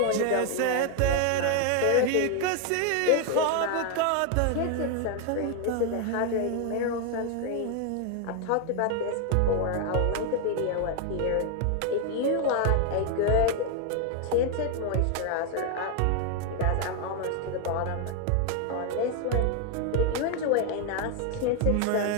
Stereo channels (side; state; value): both; different; correlation 0.00